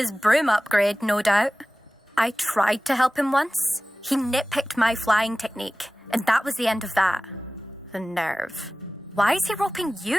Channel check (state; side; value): normal; both; correlation 0.97